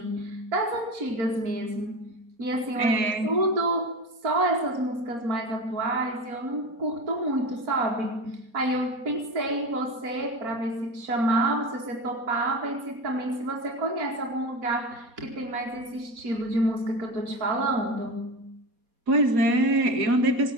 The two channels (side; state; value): left; late; 4.2 ms